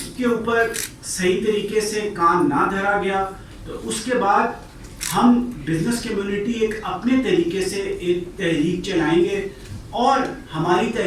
کے اوپر صحیح طریقے سے کام نہ دھرا گیا تو اس کے بعد ہم بزنس کمیونٹی ایک اپنے طریقے سے ایک تحریک چلائیں گے, اور ہماری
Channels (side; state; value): both; identical; correlation 1.00